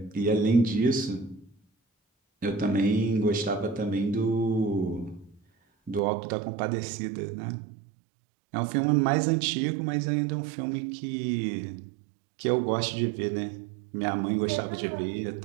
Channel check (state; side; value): drops out; left; at 6.0 s